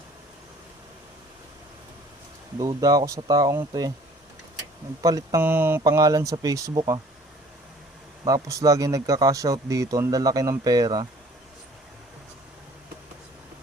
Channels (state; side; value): normal; both; correlation 0.52